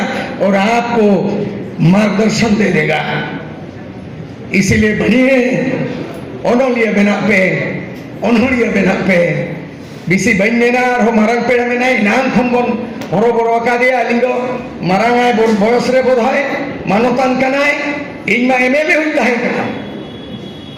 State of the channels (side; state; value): both; identical; correlation 1.00